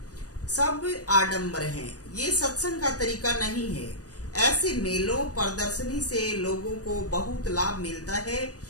सब आडंबर हैं। ये सत्संग का तरीका नहीं है। ऐसे मेलों प्रदर्शनी से लोगों को बहुत लाभ मिलता है,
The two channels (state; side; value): late; right; 0.67 ms